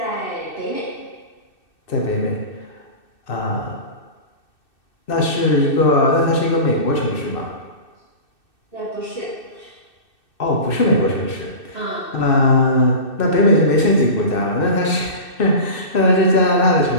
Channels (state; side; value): late; right; 2.6 ms